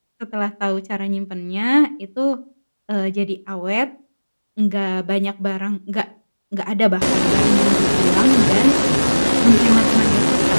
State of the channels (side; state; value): both; inverted; correlation -1.00